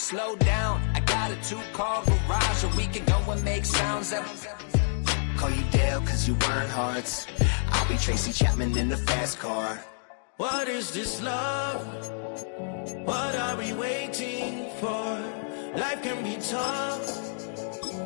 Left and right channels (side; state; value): right; silent; digital silence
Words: down, I got a 2-car garage, or we can go and make sounds that... Call you Dale, cause you weren't hearts. I'll be Tracy Chapman in the fast car. What is this love? What are we waiting for? Life can be tough,